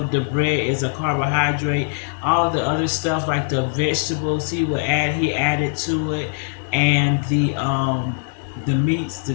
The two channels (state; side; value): silent; right; digital silence